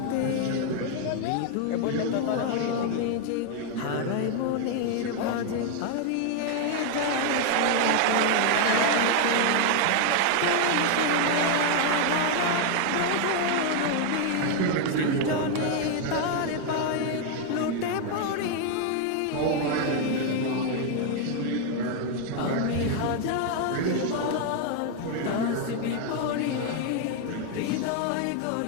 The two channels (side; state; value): both; different; correlation 0.00